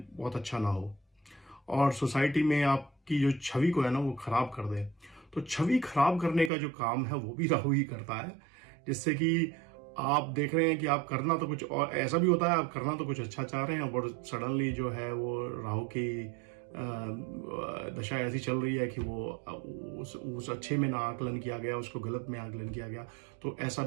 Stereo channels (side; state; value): left; drops out; at 6.5 s